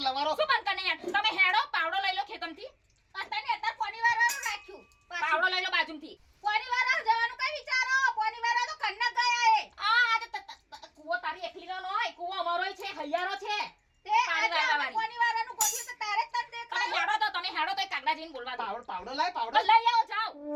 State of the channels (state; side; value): identical; both; correlation 1.00